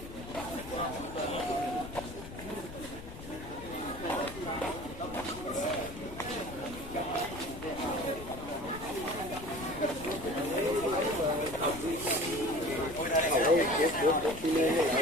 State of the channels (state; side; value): noise; left; rumble, 12 dB below the sound